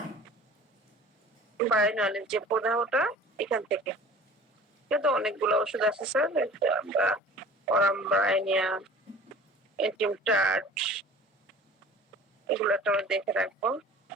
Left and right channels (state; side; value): normal; both; correlation 0.44